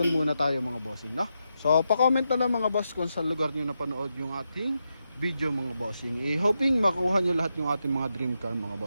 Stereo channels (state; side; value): inverted; both; correlation -0.86